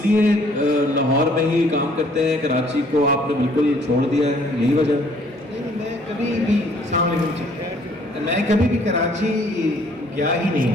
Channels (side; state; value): both; normal; correlation 0.60